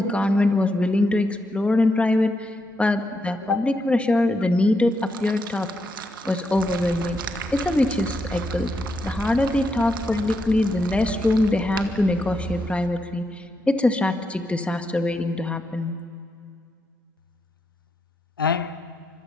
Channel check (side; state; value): both; normal; correlation 0.82